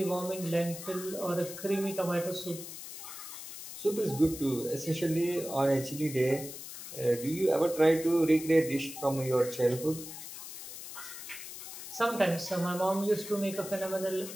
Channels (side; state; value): left; noise; hiss, 11 dB below the sound